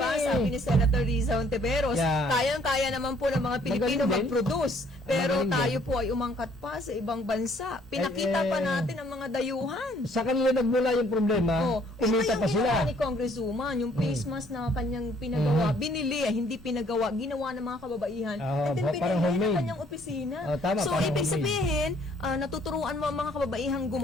ni- Sabi ni Senator Riza Ontiveros, Yeah. kayang-kaya naman po ng mga Pilipino Magaling din. mag-produce. Pero Magaling tayo din. po ay umangkat pa sa ibang bansa. Pinakita pa natin ang mga dayuhan. Sa kanila nagmula yung problema, kumita pa yung sila. ginawa ni Congresswoman, yung face mask na kanyang pinagawa, binili, hindi pinagawa, ginawa ng mga kababaihan, Ah, and then parang pinili homemade. ng kanyang opisina. Oh, tama, So, parang ibig homemade. sabihin, natuturuan mo ang mga kababaihang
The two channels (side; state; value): both; normal; correlation 0.63